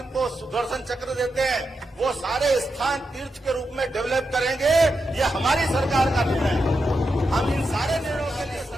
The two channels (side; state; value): both; normal; correlation 0.87